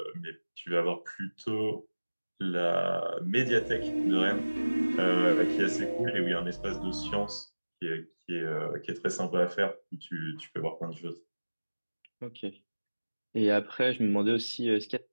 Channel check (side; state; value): both; inverted; correlation -1.00